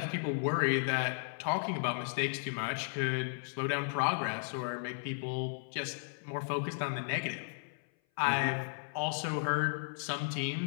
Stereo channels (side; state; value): right; silent; 55 dB below the other